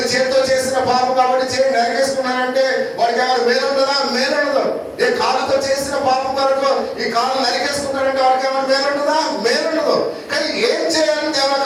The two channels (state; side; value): identical; both; correlation 1.00